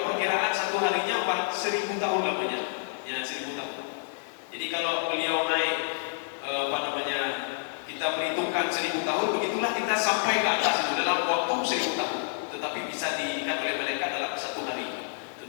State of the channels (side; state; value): right; silent; 59 dB below the other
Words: perkiraan satu harinya 1000 tahun namanya. Ya, 1000 tahun. Jadi kalau beliau naik kita perhitungkan 1000 tahun, begitulah kita sampai ke atas itu dalam waktu 1000 tahun. Tetapi bisa diingat oleh malaikat dalam satu hari.